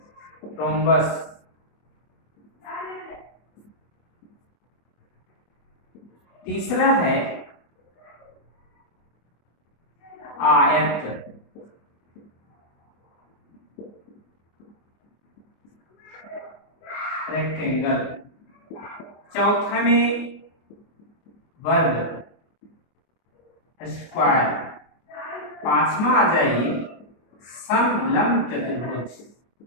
रोम्बस। तीसरा है आयत। रेक्टेंगल। चौथा में वर्ग, स्क्वायर। पांचवा आ जाइए समलंब चतुर्भुज।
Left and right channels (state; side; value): late; right; 24 ms